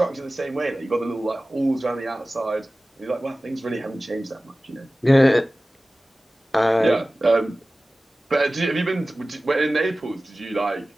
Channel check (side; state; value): both; normal; correlation 0.97